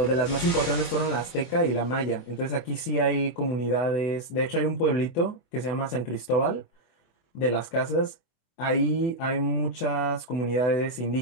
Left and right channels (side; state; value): right; late; 24 ms